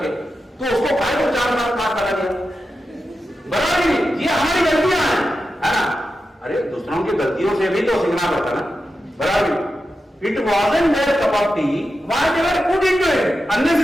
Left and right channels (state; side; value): normal; both; correlation 0.90